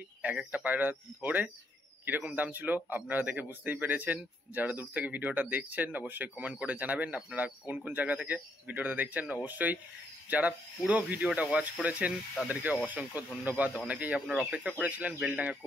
এক একটা পায়রা ধরে কিরকম দাম ছিল আপনারা দেখে বুঝতেই পেরেছেন। যারা দূর থেকে ভিডিওটা দেখছেন অবশ্যই কমেন্ট করে জানাবেন আপনারা কোন কোন জায়গা থেকে ভিডিওটা দেখছেন। অবশ্যই যারা পুরো ভিডিওটা ওয়াচ করেছেন তাদেরকে অসংখ্য ধন্যবাদ। অনেকেই আপনারা অপেক্ষা করেছিলেন বেলডাঙ্গা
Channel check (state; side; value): normal; both; correlation 0.74